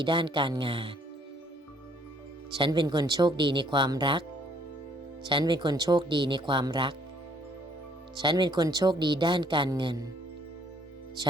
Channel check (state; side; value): normal; both; correlation 0.63